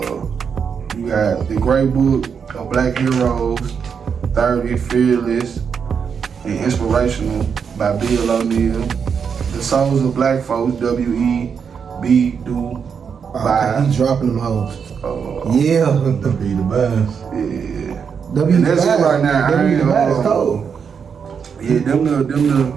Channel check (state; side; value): quieter; left; 6.6 dB